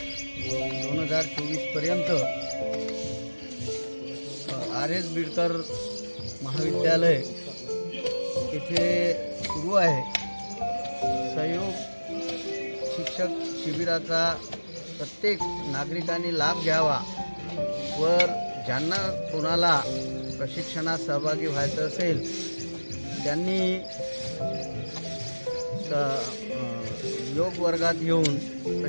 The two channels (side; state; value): both; inverted; correlation -1.00